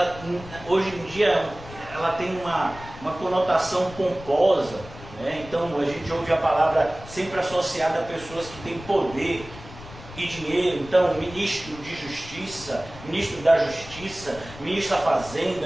hoje em dia, ela tem uma conotação pomposa, né? Então a gente ouve a palavra sempre associada a pessoas que têm poder e dinheiro. Então, ministro de justiça, ministro da justiça, ministro da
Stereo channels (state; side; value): noise; left; rumble, 16 dB below the sound